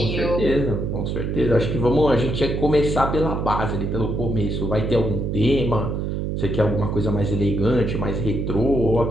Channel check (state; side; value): noise; right; hum, 2 dB below the sound